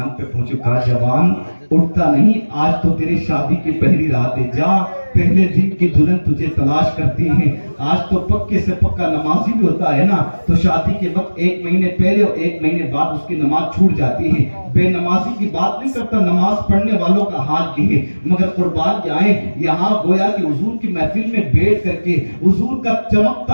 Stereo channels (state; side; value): inverted; both; correlation -1.00